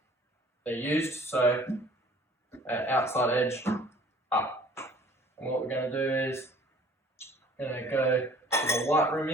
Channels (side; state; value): both; normal; correlation 0.52